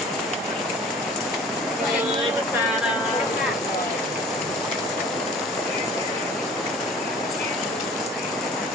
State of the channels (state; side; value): normal; both; correlation 0.47